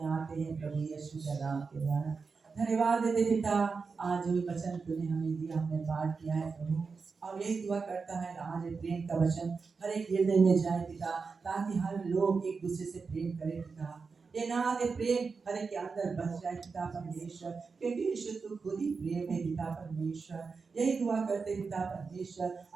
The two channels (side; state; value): left; quieter; 4.9 dB